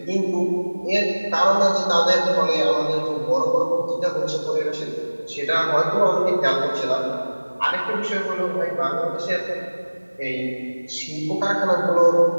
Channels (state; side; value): inverted; both; correlation -1.00